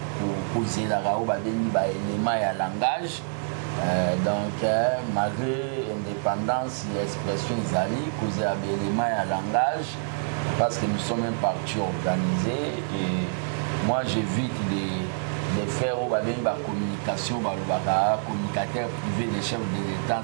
poser la rao ba deni ba élément ya langage donc malgré indépendance et expression izali causer ba élément ya langage. Parce que nous sommes un parti organisé et moi j'évite de faire la communication, communicateur privé des chefs de l'État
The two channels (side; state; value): left; silent; digital silence